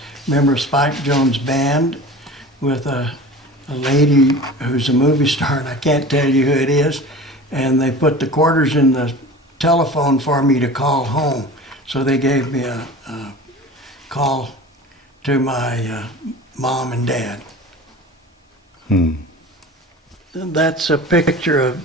member of Spike Jones' band, with a lady who's a movie star, and I can't tell you who it is, and they put the quarters in the telephone for me to call home. So they gave me a call to my mom and dad. That's a picture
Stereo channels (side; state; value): both; normal; correlation 0.37